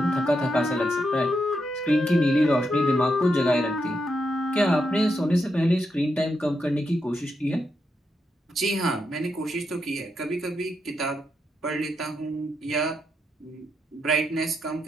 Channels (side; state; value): both; normal; correlation 0.83